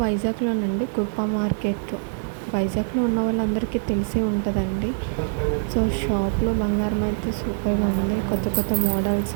వైజాగ్లోనండి, కృపా మార్కెట్. వైజాగ్లో ఉన్న వాళ్ళందరికీ తెలిసే ఉంటుందండి. సో షాప్లో బంగారం అయితే సూపర్గా ఉంది. కొత్త కొత్త మోడల్స్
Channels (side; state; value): left; silent; digital silence